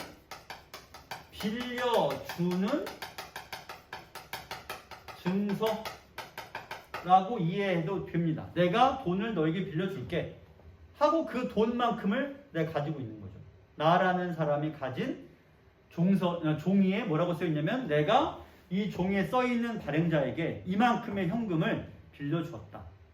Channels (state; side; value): identical; both; correlation 1.00